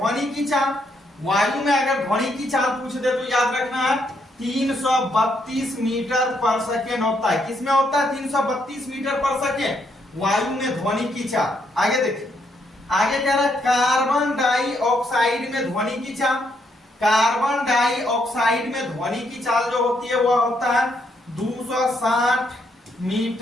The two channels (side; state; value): both; normal; correlation 0.75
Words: की चाल, वायु में अगर ध्वनि की चाल पूछ दे तो याद रखना है 332 मीटर पर सेकेंड होता है। किसमें होता है, 332 मीटर पर सेकेंड वायु में ध्वनि की चाल। आगे देखिए, आगे कह रहा है कार्बन डाइऑक्साइड में ध्वनि की चाल, कार्बन डाइऑक्साइड में ध्वनि की चाल जो होती है वह होता है 260